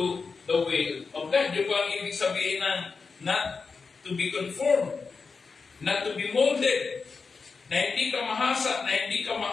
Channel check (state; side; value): quieter; right; 4.8 dB